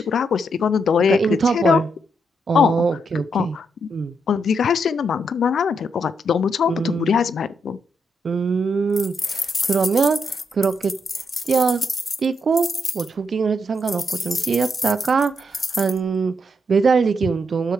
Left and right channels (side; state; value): both; normal; correlation 0.80